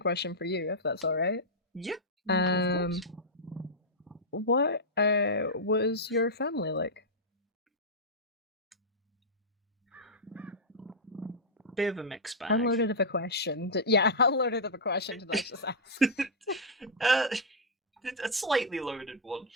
for you, if that's all right. Yeah. Of course. What was your family like? Bit of a mixed bag. How loaded of a question? Yeah, how loaded of a question did I just ask? A slightly loaded one.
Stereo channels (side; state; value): both; normal; correlation -0.07